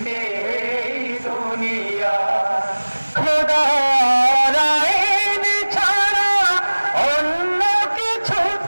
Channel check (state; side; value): inverted; both; correlation -1.00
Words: এই দুনিয়া। খোদা